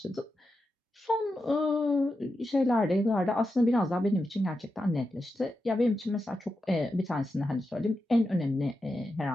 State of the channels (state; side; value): normal; both; correlation 0.88